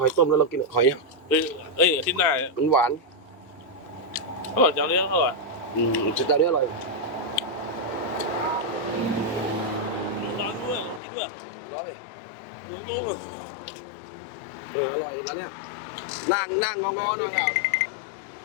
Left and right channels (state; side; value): drops out; right; at 11.0 s